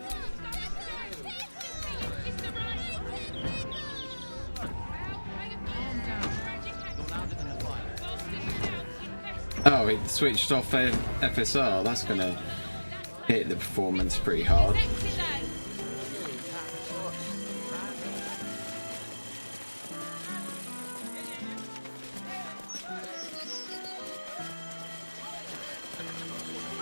Oh, it switched off FSR. That's gonna hit the performance pretty hard.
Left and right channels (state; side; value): inverted; both; correlation -1.00